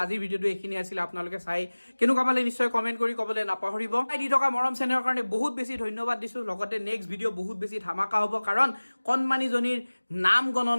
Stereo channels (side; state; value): both; inverted; correlation -1.00